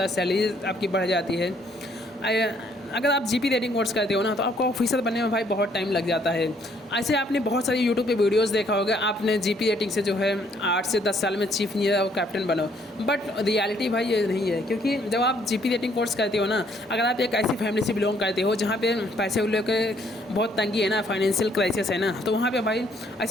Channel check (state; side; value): normal; both; correlation 0.66